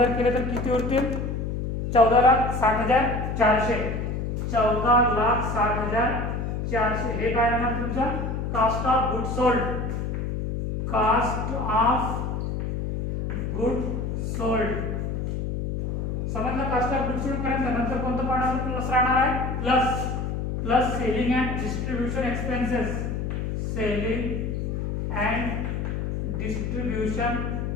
केले तर किती उरतील, 14,60,400. 14,60,400 हे काय येणार तुमचा cost of good sold. Cost of good sold समजलं. कास्ट ऑफ गुड सोल्ड पर्यंत नंतर कोणतं पॉईंट प्लस राहणार आहे, plus selling and distribution expenses. Selling and distribution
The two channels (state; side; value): noise; left; hum, 2 dB below the sound